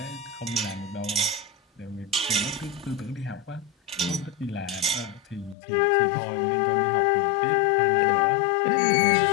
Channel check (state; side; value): drops out; right; at 5.6 s